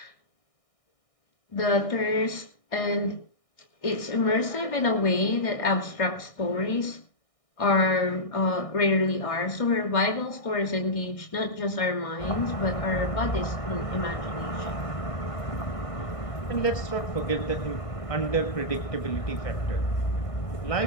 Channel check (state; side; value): late; right; 1.6 ms